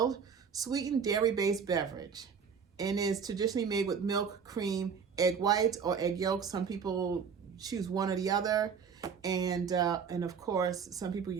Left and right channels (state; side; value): quieter; left; 6.5 dB